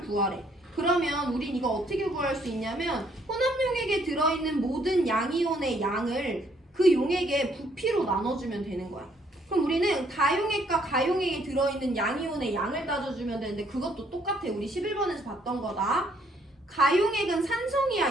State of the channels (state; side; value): normal; both; correlation 0.67